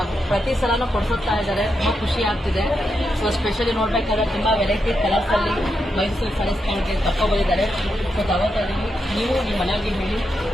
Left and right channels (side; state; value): both; normal; correlation 0.84